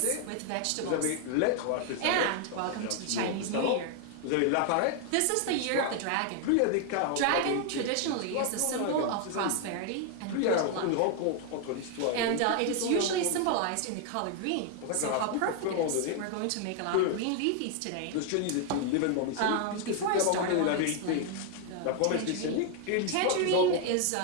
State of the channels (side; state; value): both; different; correlation 0.01